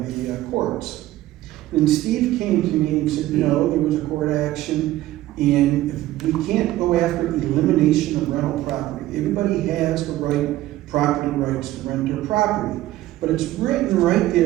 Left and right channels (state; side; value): quieter; left; 15.4 dB